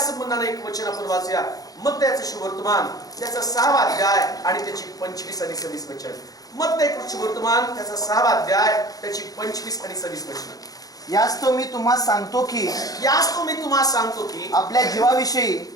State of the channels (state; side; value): late; right; 0.18 ms